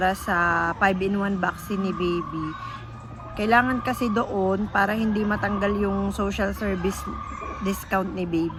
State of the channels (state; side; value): identical; both; correlation 1.00